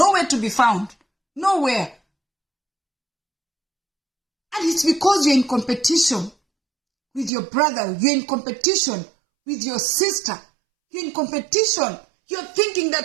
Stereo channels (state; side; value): drops out; left; at 7.3 s